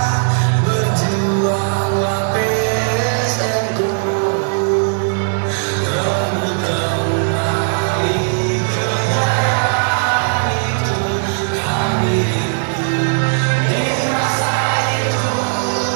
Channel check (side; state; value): left; silent; 55 dB below the other